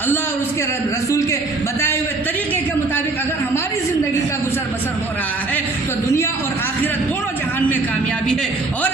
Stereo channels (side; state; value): left; quieter; 3.4 dB